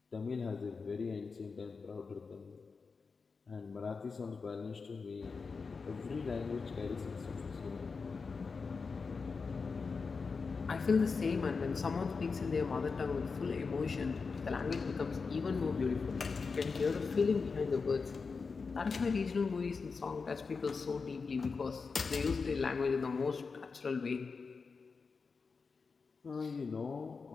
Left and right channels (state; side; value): quieter; right; 4.8 dB